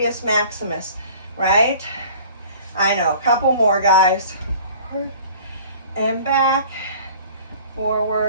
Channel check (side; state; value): both; inverted; correlation -0.47